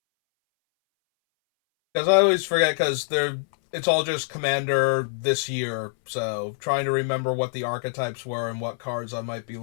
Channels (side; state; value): right; silent; 61 dB below the other